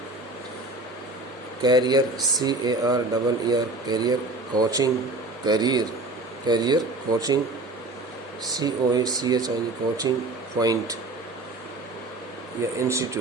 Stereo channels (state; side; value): quieter; left; 3.0 dB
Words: career, CARER, career coaching, career coaching, COACHING, coaching point या